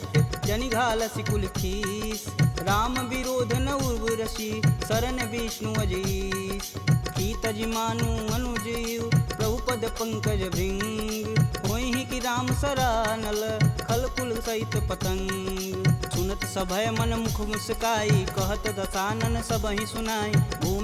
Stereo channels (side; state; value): both; identical; correlation 1.00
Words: जनि घालसि कुल खीस। राम विरोध न उर्वरसी, शरण विष्णु अजीस। की तजि मानु अनुजीव, प्रभु पद पंकज भृंग। होहि कि राम सरानल, खल कुल सहित पतंग। सुनत सभय मन मुख मुस्काई, कहत दसानन सबहि सुनाई।